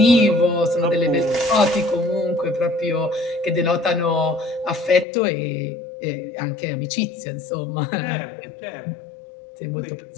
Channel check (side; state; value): right; drops out; at 5.1 s